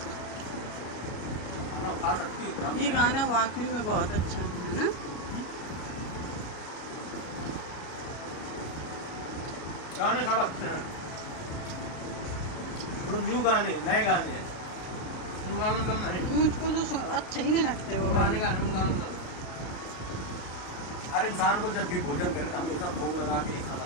खा सकती हो। ये गाना वाकई में बहुत अच्छा है ना। गाने खा रखे हैं, न्यू गाने, नए गाने हैं। मुझको तो अच्छे ही नहीं लगते वो गाने। हर इंसान को जब भी भोजन करे तो हमेशा भोग लगा के ही खाना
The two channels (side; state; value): right; late; 34 ms